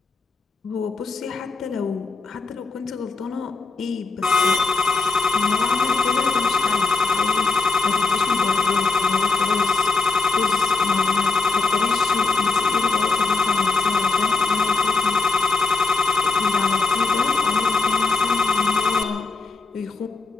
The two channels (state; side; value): quieter; right; 3.9 dB